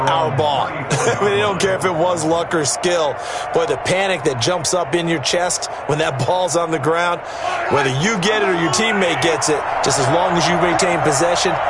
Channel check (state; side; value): identical; both; correlation 1.00